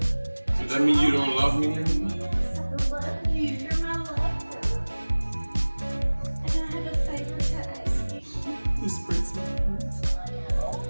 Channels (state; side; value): inverted; both; correlation -1.00